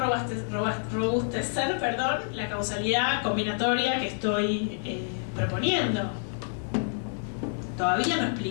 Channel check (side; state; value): right; silent; digital silence